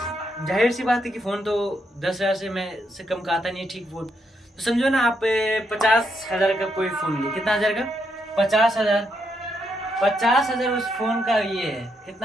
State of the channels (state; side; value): normal; both; correlation 0.79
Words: जाहिर सी बात है कि फ़ोन तो 10,000 से कम का आता नहीं है, ठीक फ़ोन। तो समझो ना आप 50,000 का कोई फ़ोन लिए, कितना हज़ार का, 50,000, 50,000 उस फ़ोन का ये है,